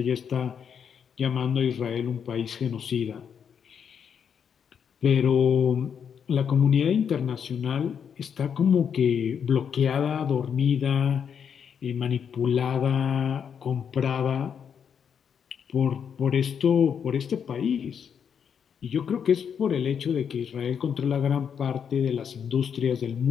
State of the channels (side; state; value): right; quieter; 7.4 dB